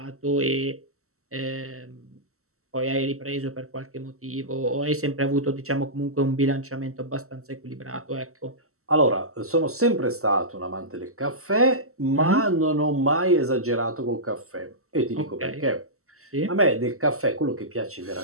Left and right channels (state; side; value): late; left; 0.63 ms